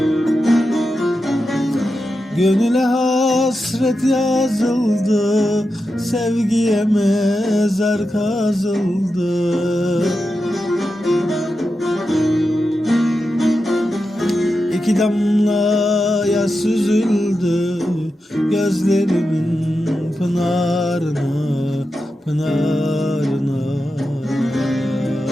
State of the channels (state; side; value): normal; both; correlation 0.90